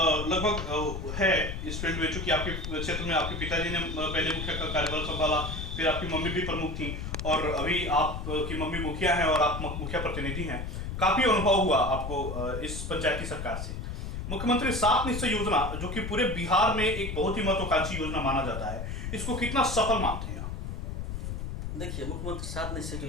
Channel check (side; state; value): left; noise; rumble, 5 dB below the sound